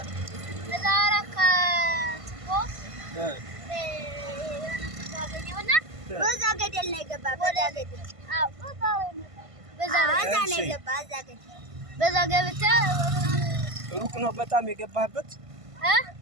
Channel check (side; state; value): left; late; 1.5 ms